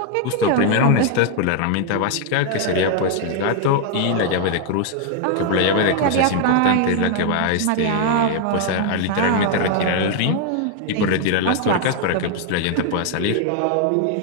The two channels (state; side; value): different; both; correlation 0.00